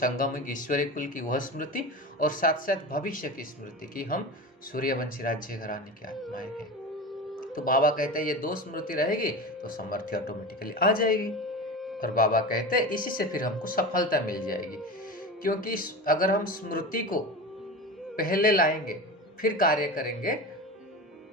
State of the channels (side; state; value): both; normal; correlation 0.28